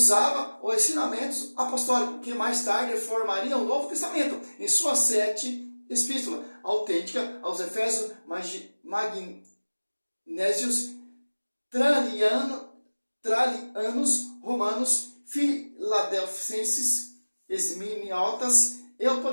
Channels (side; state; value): both; inverted; correlation -1.00